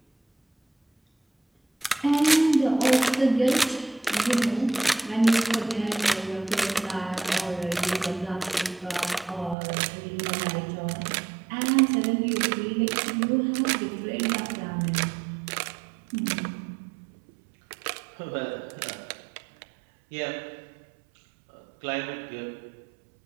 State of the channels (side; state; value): left; drops out; at 9.6 s